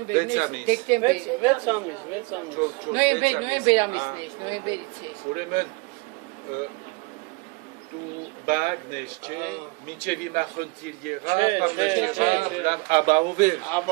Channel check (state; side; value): quieter; left; 26.6 dB